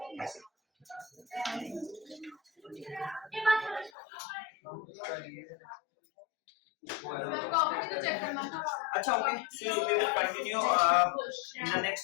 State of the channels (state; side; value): drops out; right; at 3.9 s